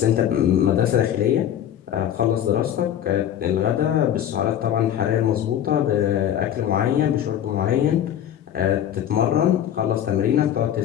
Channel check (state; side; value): quieter; right; 10.4 dB